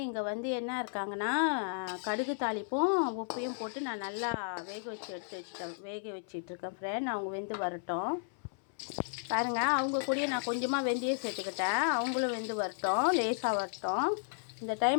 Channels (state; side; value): silent; right; 55 dB below the other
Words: இங்கே வந்து என்ன இருக்காங்கன்னா, கடுகு தாளிப்பும் உப்பையும் போட்டு நான் நல்லா வேக வச்சிட்ருக்கேன் ஃப்ரெண்ட். அவங்க வெந்து வரட்டும். பாருங்கள், அவங்க கூடயே நான் கொஞ்சமாக வெந்தயம் சேர்த்துக்கிட்டேன். அவங்களும் வெந்து வரட்டும், லேசாக வரட்டும். இந்த